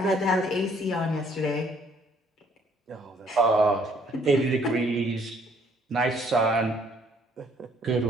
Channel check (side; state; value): both; normal; correlation 0.63